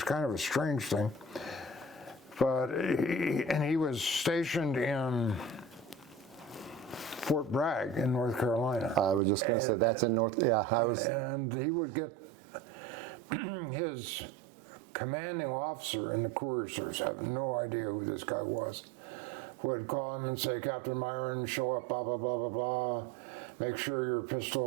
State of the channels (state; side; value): drops out; left; at 9.2 s